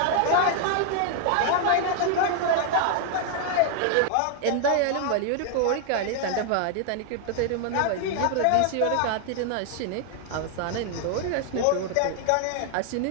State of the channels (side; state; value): both; different; correlation 0.00